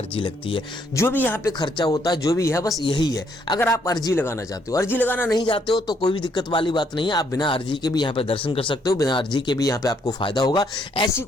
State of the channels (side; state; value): both; normal; correlation 0.70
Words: लगती है। जो भी यहाँ पे खर्चा होता है, जो भी है, बस यही है। अगर आप अर्जी लगाना चाहते हो, अर्जी लगाना नहीं चाहते हो तो कोई भी दिक्कत वाली बात नहीं है। आप बिना अर्जी के भी यहाँ पे दर्शन कर सकते हो, बिना अर्जी के भी यहाँ पे आपको फायदा होगा। ऐसी